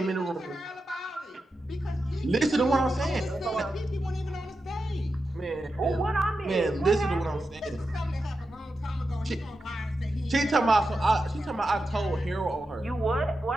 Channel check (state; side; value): normal; both; correlation 0.89